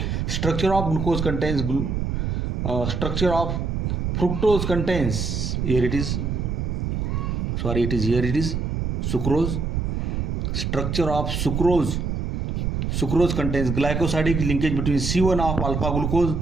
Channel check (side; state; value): right; noise; rumble, 1 dB below the sound